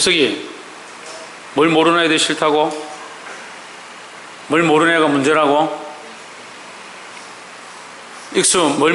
뭘 모르는 애들이 싫다고? 뭘 모르는 애가 문제라고? 익수, 뭘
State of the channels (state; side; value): identical; both; correlation 1.00